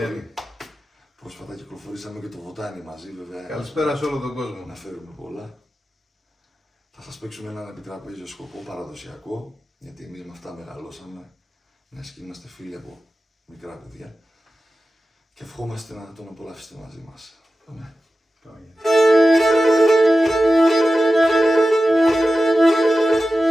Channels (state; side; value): normal; both; correlation 0.94